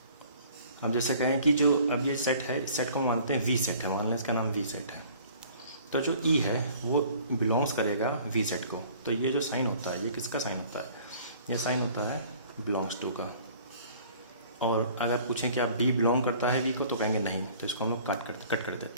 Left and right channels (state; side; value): inverted; both; correlation -0.52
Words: अब जैसे कहें कि जो अब ये सेट है, इस सेट को मानते हैं V सेट है, मान लें इसका नाम V सेट है। तो जो E है वो बिलोंग्स करेगा V सेट को। तो ये जो साइन होता है ये किसका साइन होता है? ये साइन होता है बिलोंग्स टू का। और अगर पूछें कि आप B बिलोंग करता है V को, तो कहेंगे नहीं, तो इसको हम लोग कट कर